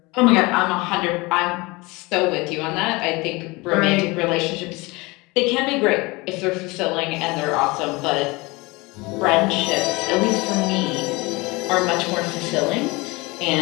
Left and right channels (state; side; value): quieter; right; 24.1 dB